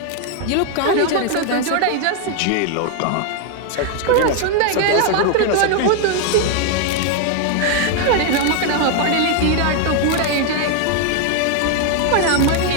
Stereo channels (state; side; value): different; both; correlation 0.00